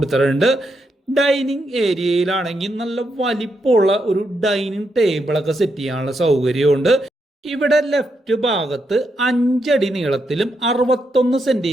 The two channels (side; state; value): both; normal; correlation 0.81